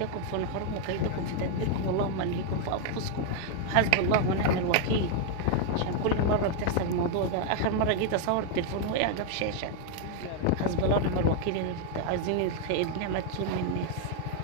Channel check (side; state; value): both; different; correlation 0.00